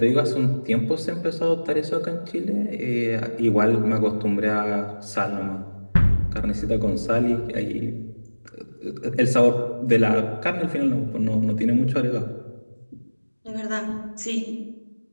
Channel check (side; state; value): both; inverted; correlation -1.00